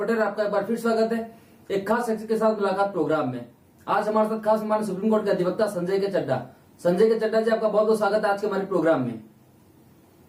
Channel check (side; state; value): both; identical; correlation 1.00